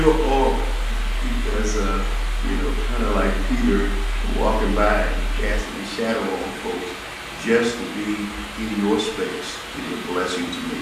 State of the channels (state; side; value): identical; both; correlation 1.00